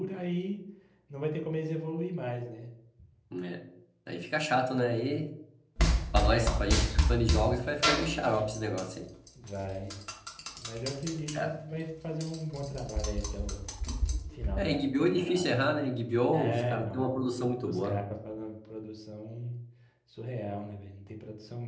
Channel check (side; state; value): both; identical; correlation 1.00